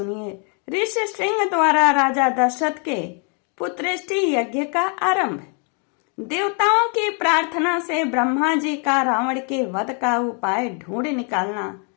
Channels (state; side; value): quieter; right; 38.7 dB